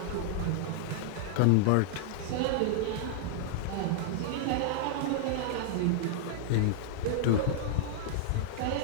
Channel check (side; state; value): both; different; correlation -0.01